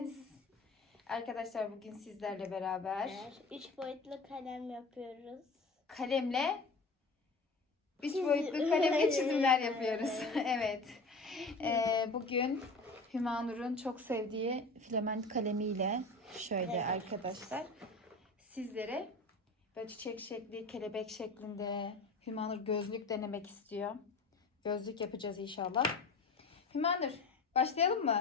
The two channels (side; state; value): right; quieter; 3.3 dB